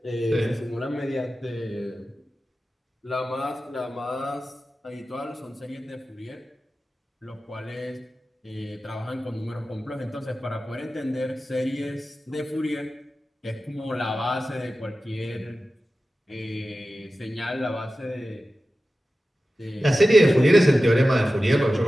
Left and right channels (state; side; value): normal; both; correlation 0.94